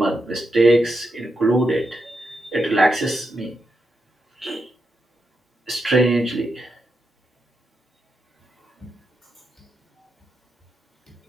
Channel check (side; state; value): both; normal; correlation 0.85